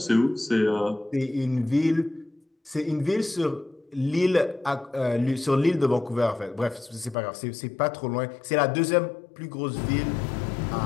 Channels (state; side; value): drops out; right; at 7.2 s